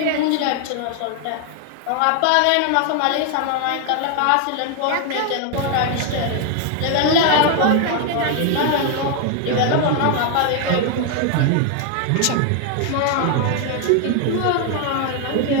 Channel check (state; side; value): different; both; correlation 0.00